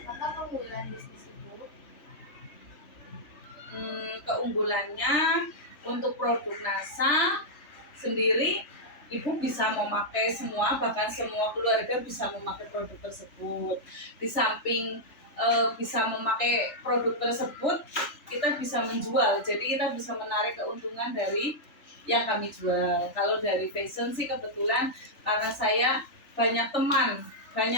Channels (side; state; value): right; late; 3.4 ms